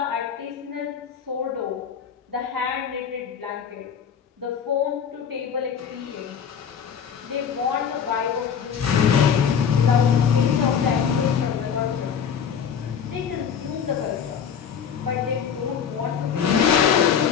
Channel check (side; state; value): right; quieter; 7.5 dB